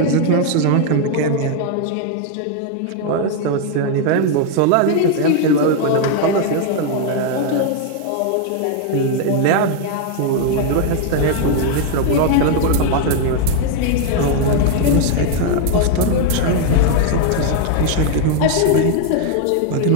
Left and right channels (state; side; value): different; both; correlation 0.01